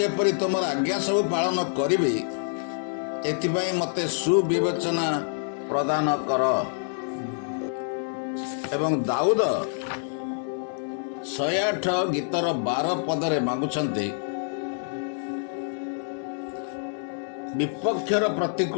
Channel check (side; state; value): right; silent; digital silence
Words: ତୁମର ଆଜ୍ଞା ସବୁ ପାଳନ କରିବି, ଏଥିପାଇଁ ମୋତେ ସୁବିବେଚନା ପ୍ରଦାନ କର। ଏବଂ ଦାଉଦ 108 ଗୀତର 12 ପଦରେ ମାଗୁଛନ୍ତି, ବିପକ୍ଷର